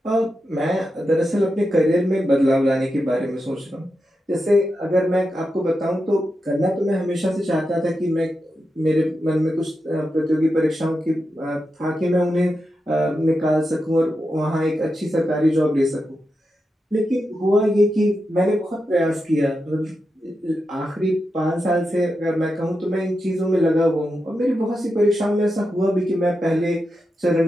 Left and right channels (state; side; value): normal; both; correlation 0.88